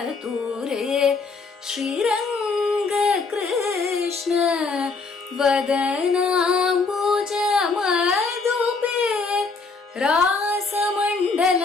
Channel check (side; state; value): right; quieter; 4.3 dB